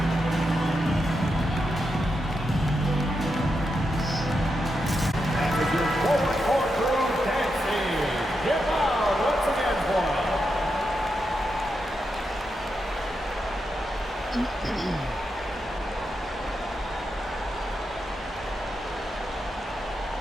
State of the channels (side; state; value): both; normal; correlation 0.85